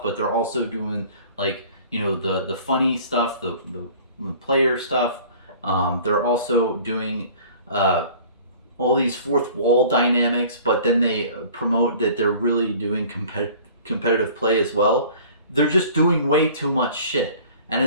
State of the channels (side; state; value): both; inverted; correlation -0.47